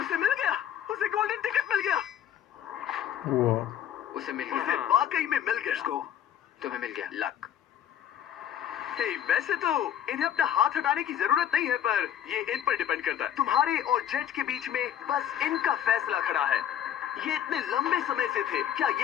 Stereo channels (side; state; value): right; quieter; 10.3 dB